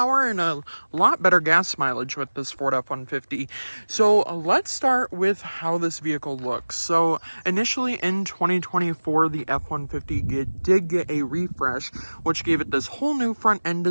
and a lot better gas mileage with this Ford F-150. So let's start with how this vehicle looks. So initially in 2024, the F-150 did get a refresh, which gave it this whole new front end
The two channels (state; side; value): inverted; both; correlation -1.00